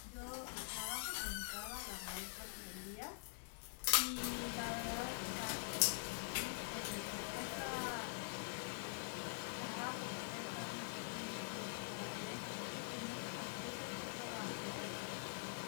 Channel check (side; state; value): right; silent; digital silence